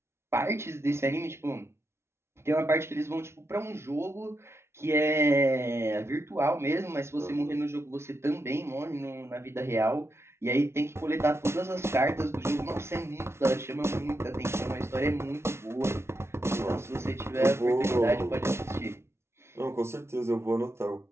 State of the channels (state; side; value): late; left; 0.13 ms